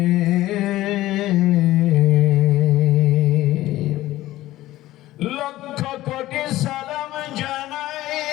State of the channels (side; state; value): right; quieter; 15.9 dB